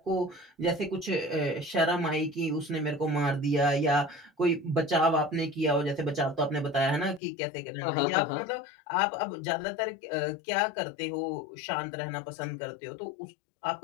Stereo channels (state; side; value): drops out; right; at 7.2 s